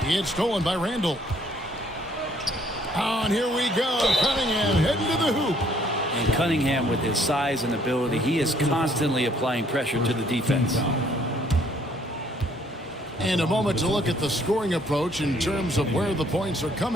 It's stolen by Randall. And here we go. Cunningham heading to the hoop. And Cunningham, with his size and ability, he is constantly applying pressure to the defense. And a moment to look at the scoring approach in terms of where the points are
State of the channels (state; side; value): normal; both; correlation 0.64